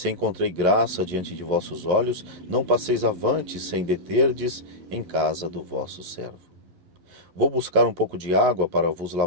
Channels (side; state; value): left; late; 11 ms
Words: encontrei graça diante de vossos olhos, não passeis avante sem deterdes em casa do vosso servo. Vou buscar um pouco de água para vos